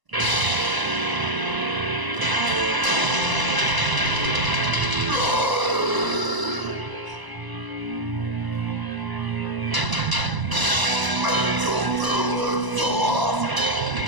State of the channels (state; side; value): late; left; 1.0 ms